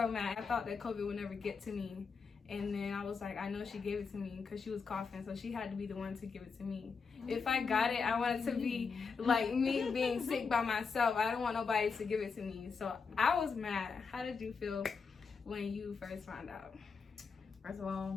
mad. I thought that COVID would never get to me. And then I was like, I know she gave it to me because she was coughing, so she had to be the one to give it to me. If I got it, I wanted to be like me being sick by myself. I don't want nobody to give it to me. So I was mad. How did you feel when you first found out? First of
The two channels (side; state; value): right; quieter; 5.3 dB